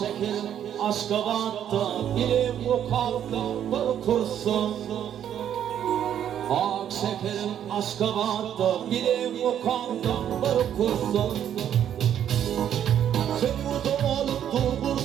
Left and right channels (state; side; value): quieter; left; 9.9 dB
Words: aşka battı, bilim bu kaldı, bir kursun. Ak şekerim, aşka battı, bilim bu kaldı, bir kursun. Sen bu olup dur,